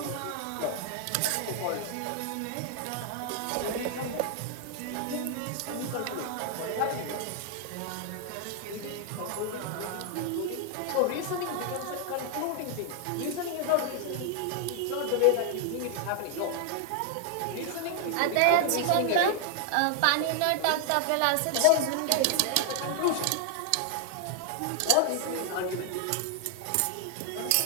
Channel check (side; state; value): both; different; correlation 0.00